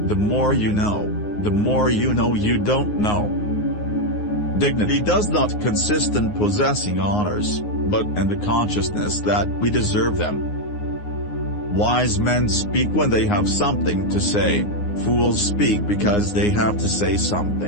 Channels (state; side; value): late; right; 9.6 ms